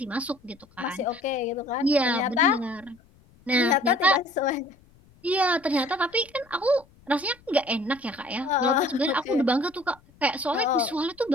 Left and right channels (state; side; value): noise; left; rumble, 29 dB below the sound